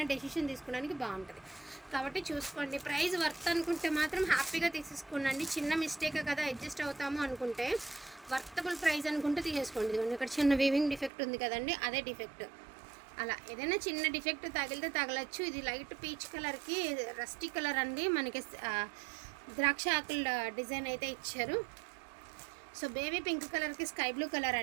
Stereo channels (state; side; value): drops out; left; at 11.1 s